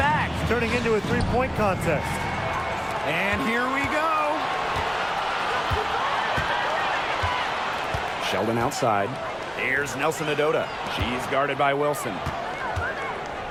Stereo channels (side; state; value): both; identical; correlation 1.00